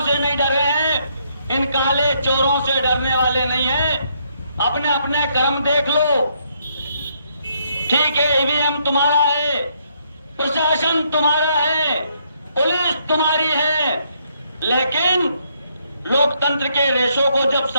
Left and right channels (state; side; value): inverted; both; correlation -0.72